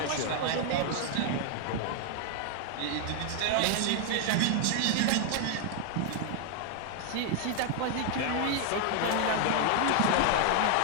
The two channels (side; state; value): both; different; correlation 0.00